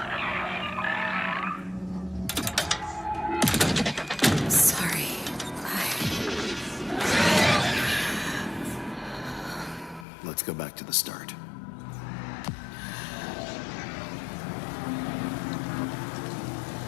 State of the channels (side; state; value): right; drops out; at 10.1 s